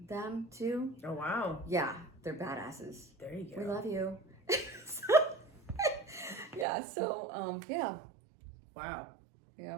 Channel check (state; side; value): drops out; left; at 6.7 s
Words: them too. Oh wow. Yeah, they're badasses. There you go. We love you. Yeah. Wow.